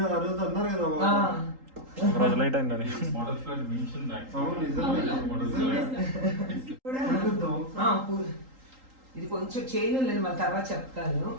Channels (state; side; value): late; left; 3.8 ms